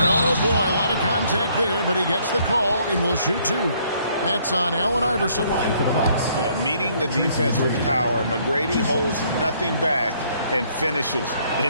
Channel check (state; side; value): inverted; both; correlation -0.65